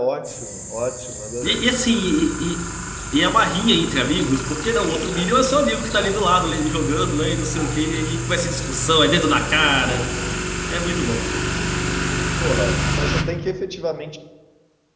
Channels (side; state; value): both; identical; correlation 1.00